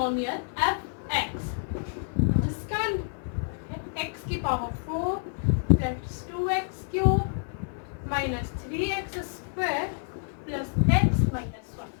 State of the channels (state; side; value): silent; right; 58 dB below the other